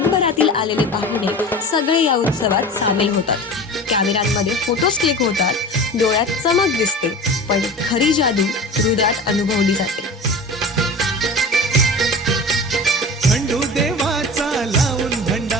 आलेले पाहुणे सगळे या उत्सवात सामील होतात. कॅमेऱ्यांमध्ये फोटोज क्लिक होतात, डोळ्यात चमक दिसते, पण खरी जादू हृदयात अनुभवली जाते.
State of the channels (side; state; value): both; normal; correlation 0.34